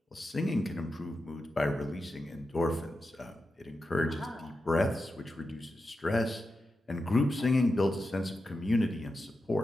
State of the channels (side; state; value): both; normal; correlation 0.90